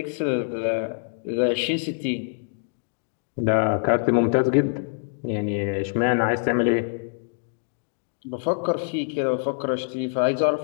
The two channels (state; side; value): silent; right; digital silence